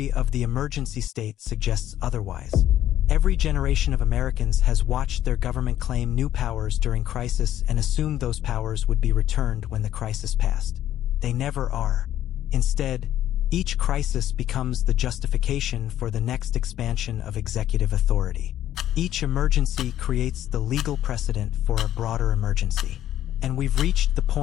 of the emergency state suggests otherwise. Every generation of Americans has watched their government claim new powers during crisis and assumed those powers would be returned when the crisis passed. They never are. Instead, each crisis becomes the justification for the next expansion of executive authority. Each emergency creates the legal precedent for a broader emergency. And we've reached the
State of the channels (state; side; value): quieter; right; 12.1 dB